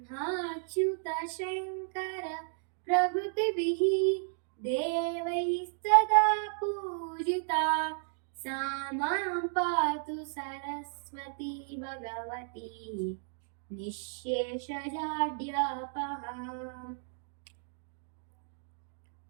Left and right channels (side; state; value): left; silent; digital silence